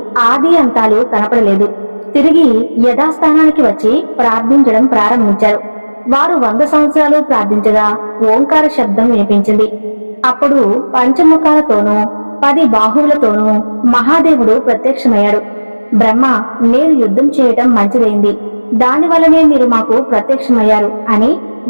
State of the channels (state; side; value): inverted; both; correlation -1.00